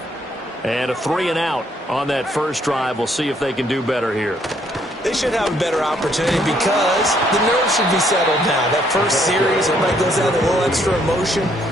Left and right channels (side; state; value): both; normal; correlation 0.68